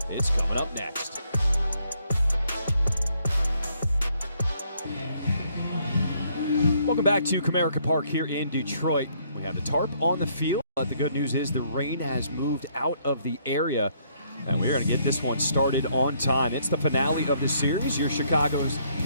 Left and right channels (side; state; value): both; inverted; correlation -0.68